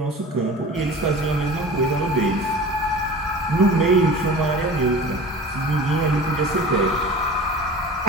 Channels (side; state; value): both; normal; correlation 0.38